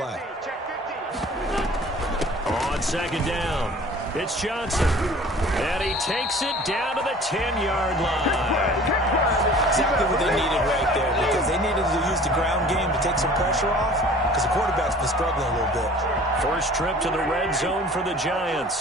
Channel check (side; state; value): both; normal; correlation 0.47